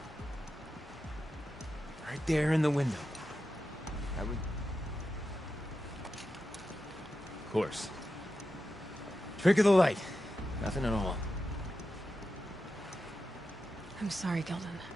Right there in the window. I would... Of course. Trick of the light. Nothing at all. I'm sorry, Gilden.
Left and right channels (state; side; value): normal; both; correlation 0.90